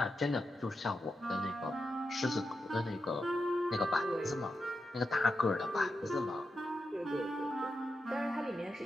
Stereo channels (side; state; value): both; normal; correlation 0.88